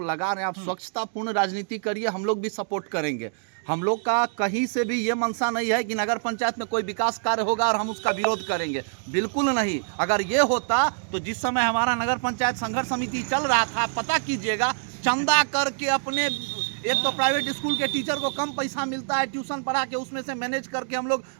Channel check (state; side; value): silent; left; digital silence